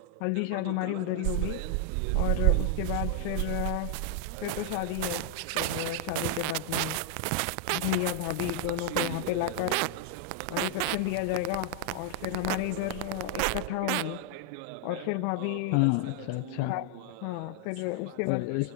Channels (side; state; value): both; different; correlation 0.00